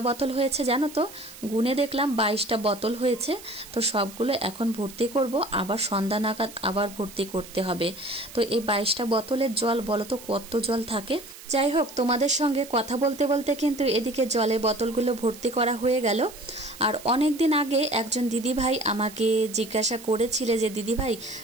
বোতল হয়েছে জানো তো, গুনে দেখলাম 22টা বোতল হয়েছে। তো সবগুলো এখন ভর্তি করব, আবার সন্ধ্যা নাগাদ আবার ভর্তি করতে হবে। তো এই 22টা বোতলের জল বলো তো কত জল থাকে। যাই হোক, তোমাদের সঙ্গে কথা বলতে বলতে কিন্তু এদিকে জলের বোতলগুলো ভর্তি করা হয়ে গেল। আর অনেক দিন আগে একজন দিদিভাই আমাকে জিজ্ঞাসা করেছিলে যে দিদিভাই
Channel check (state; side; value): noise; right; hiss, 17 dB below the sound